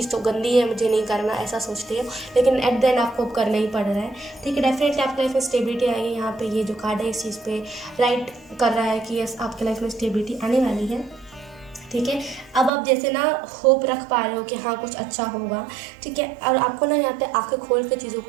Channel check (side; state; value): left; drops out; at 12.7 s